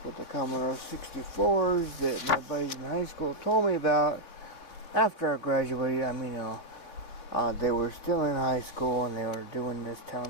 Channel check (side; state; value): right; late; 3.1 ms